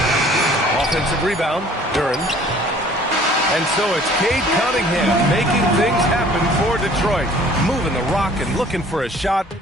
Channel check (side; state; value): both; normal; correlation 0.53